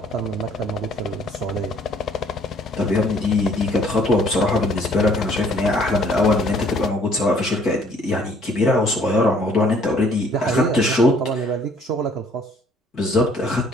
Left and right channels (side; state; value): both; normal; correlation 0.60